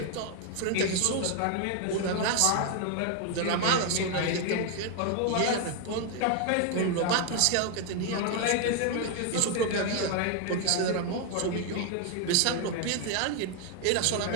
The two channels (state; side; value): different; both; correlation 0.01